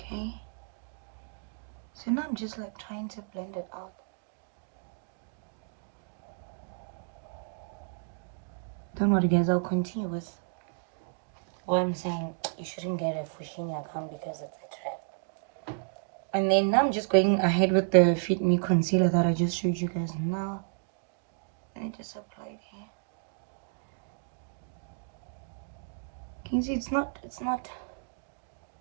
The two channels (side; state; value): left; silent; digital silence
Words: So now I'm just like trying to blend it out. Don't worry guys, I'll continue with what I'm saying. You shouldn't get a Fushini account because it's a trap. And then now I'm just going ahead with the Fit Me concealer that I just showed you guys now. I just apply it here. Can you see it's not